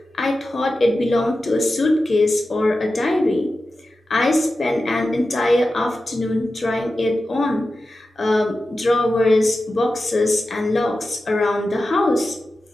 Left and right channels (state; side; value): normal; both; correlation 0.93